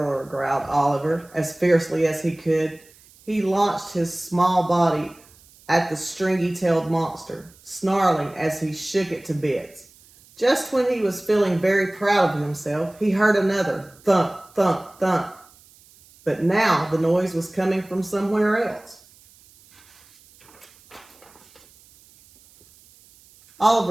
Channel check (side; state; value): right; noise; hiss, 27 dB below the sound